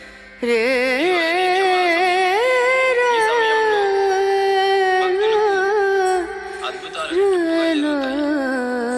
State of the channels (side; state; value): both; identical; correlation 1.00